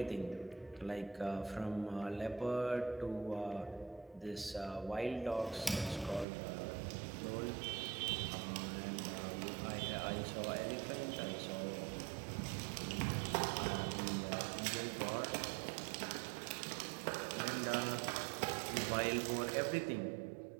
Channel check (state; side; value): drops out; left; at 6.2 s